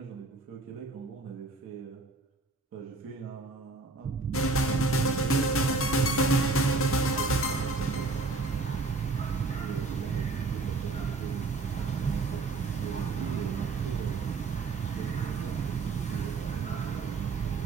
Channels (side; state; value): left; quieter; 3.6 dB